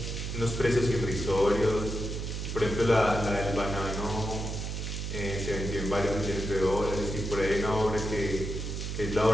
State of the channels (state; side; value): noise; right; hum, 4 dB below the sound